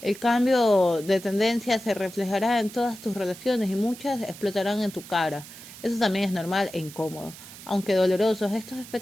el cambio de tendencia se reflejará en todas tus relaciones y muchas explotarán en tu cara. Eso también es normal e incómodo. Aunque dolorosos, estos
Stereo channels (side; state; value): right; noise; hiss, 16 dB below the sound